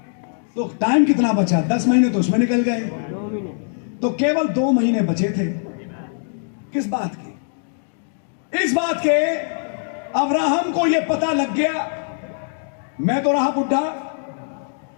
तो टाइम कितना बचा? 10 महीने तो उसमें निकल गए। तो केवल 2 महीने बचे थे। किस बात के? इस बात के अब्राहम को यह पता लग गया, मैं तो रहा बुढ़ा।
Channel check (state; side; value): silent; right; digital silence